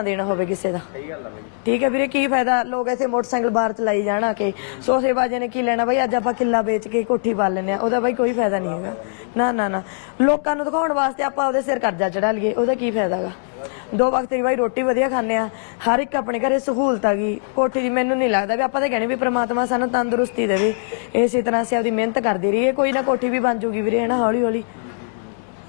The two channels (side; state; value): right; silent; digital silence